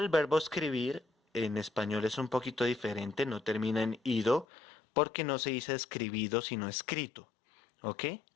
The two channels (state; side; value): drops out; right; at 4.5 s